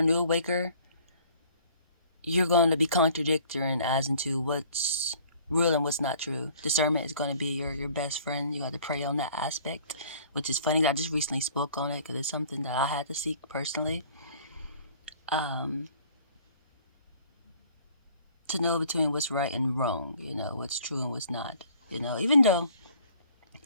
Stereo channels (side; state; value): both; inverted; correlation -0.54